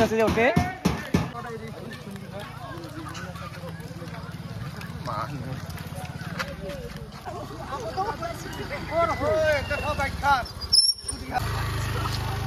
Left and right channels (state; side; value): identical; both; correlation 1.00